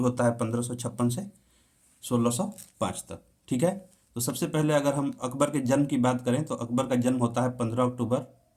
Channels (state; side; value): identical; both; correlation 1.00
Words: होता है 1556 से 1605 तक। ठीक है। तो सबसे पहले अगर हम अकबर के जन्म की बात करें तो अकबर का जन्म होता है 15 अक्टूबर